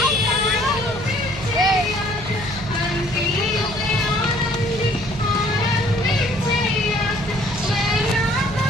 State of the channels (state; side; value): noise; right; hum, 12 dB below the sound